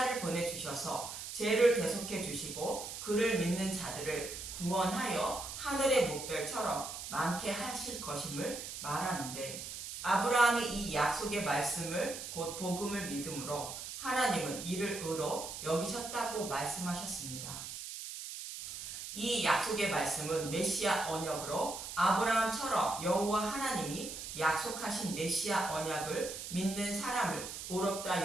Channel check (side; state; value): right; noise; hiss, 8 dB below the sound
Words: 보내주셔서 죄를 대속해 주시고 그를 믿는 자들을 구원하여 하늘의 목별처럼 많게 하실 것임을 말하는데, 아브라함이 이 약속의 말씀을 곧 복음을 믿음으로 하나님은 이를 의로 여기셨다고 말씀하셨습니다. 이 약속의 말씀은 메시아 언약으로 아브라함처럼 여호와 하나님이 약속하신 메시아 언약을 믿는 사람을